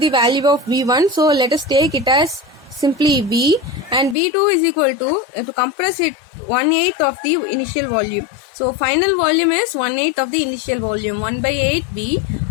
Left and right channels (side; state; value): right; drops out; at 4.2 s